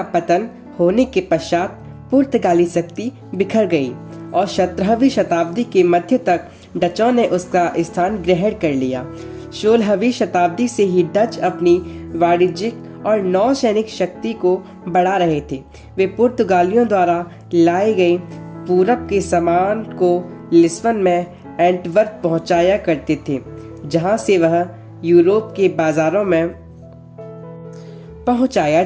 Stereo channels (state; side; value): identical; both; correlation 1.00